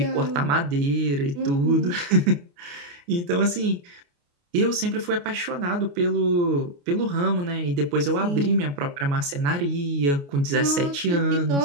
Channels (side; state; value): left; late; 28 ms